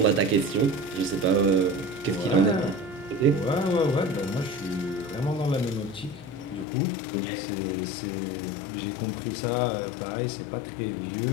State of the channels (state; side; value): drops out; right; at 6.7 s